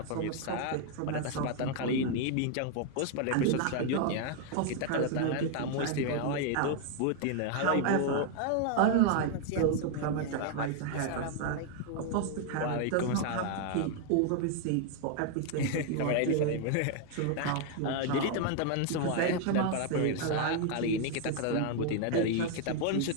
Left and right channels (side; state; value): both; different; correlation 0.00